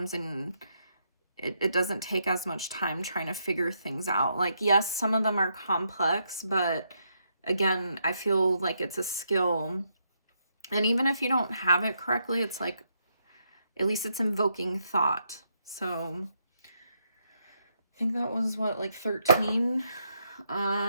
and it doesn't take as much time trying to figure things out. Like, yes, some of them are complex, but again, I feel like it's a skill. And even if you don't have it correctly, it's like, at least it's invoking thought. So I think that was what, like 13.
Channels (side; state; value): both; inverted; correlation -0.78